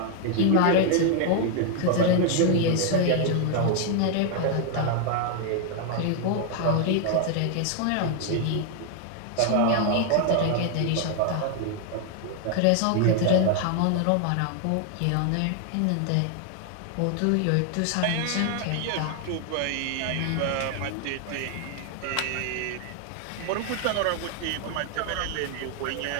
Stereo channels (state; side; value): different; both; correlation 0.00